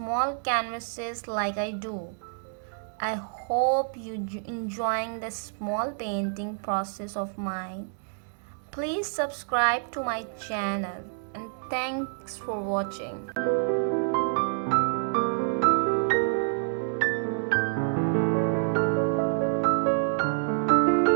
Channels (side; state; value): left; silent; digital silence